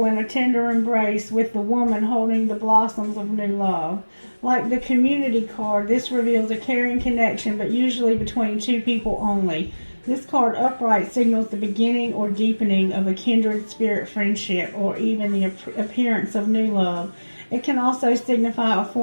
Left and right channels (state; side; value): inverted; both; correlation -1.00